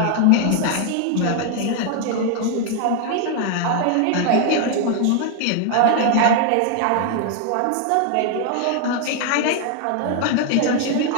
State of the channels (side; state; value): both; different; correlation 0.00